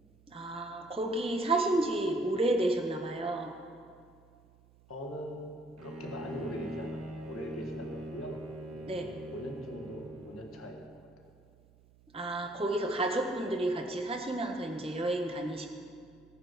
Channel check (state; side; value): noise; right; hum, 27 dB below the sound